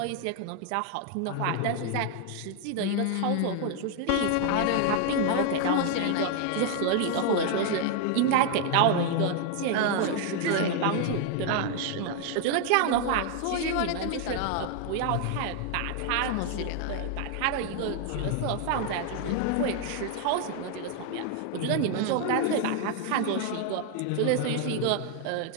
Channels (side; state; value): both; different; correlation 0.00